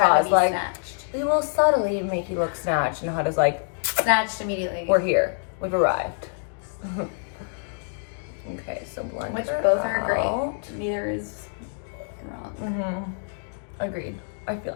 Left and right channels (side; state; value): right; silent; digital silence